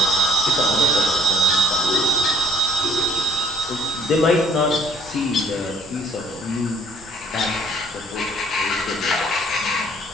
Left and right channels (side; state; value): both; normal; correlation 0.57